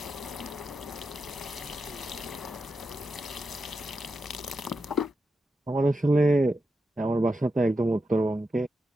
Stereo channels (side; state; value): both; normal; correlation 0.87